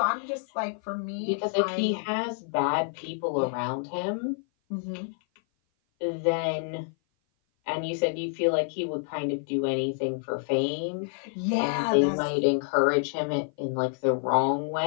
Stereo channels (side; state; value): right; silent; 56 dB below the other